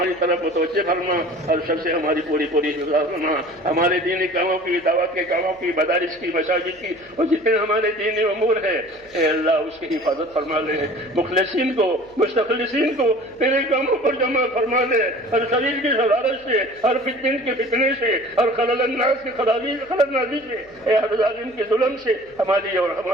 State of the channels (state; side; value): noise; left; hum, 30 dB below the sound